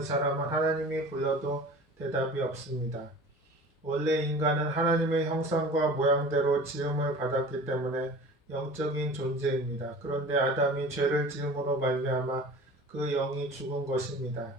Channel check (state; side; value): normal; both; correlation 0.41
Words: 사람은 하나님이 불러도 대답이 없습니다. 원래 인간은 하나님의 형상과 모양대로 지음을 받았기 때문에 영적인 존재입니다. 그런데 아담이 죄를 지음으로 말미암아 그 영이 죽은 것입니다.